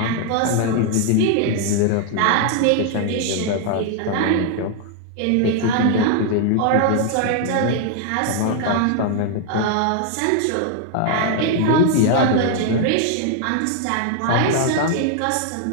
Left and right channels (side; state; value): both; different; correlation 0.00